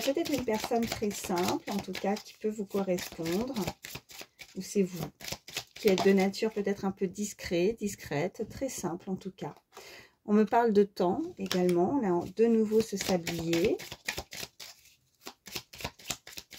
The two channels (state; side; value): identical; both; correlation 1.00